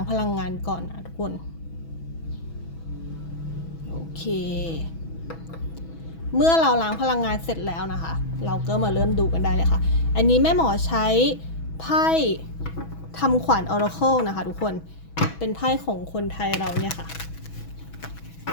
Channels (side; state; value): right; late; 6.1 ms